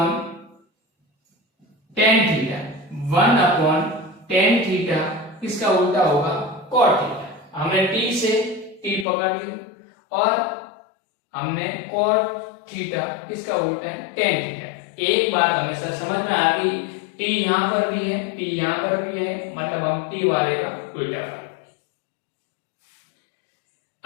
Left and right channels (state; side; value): drops out; right; at 9.1 s